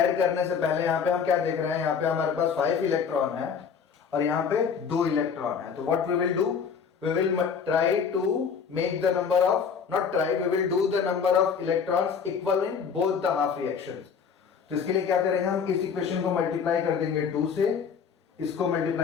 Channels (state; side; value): quieter; right; 6.5 dB